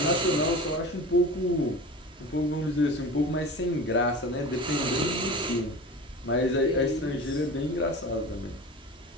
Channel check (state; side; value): normal; both; correlation 0.34